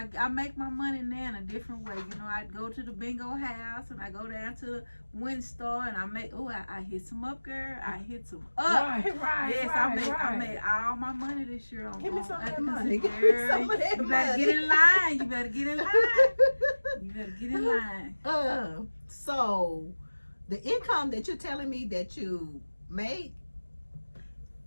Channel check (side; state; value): both; inverted; correlation -1.00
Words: I make my money now in a different way. I go to the bingo house and I go down to the Win Star and I hit some up, girl. I hit some up. Right. Yes, I made all my money this year on. Give me some of that money. Give me some of that You money. better get in line. You better get in line. So the income that you're telling me that you made,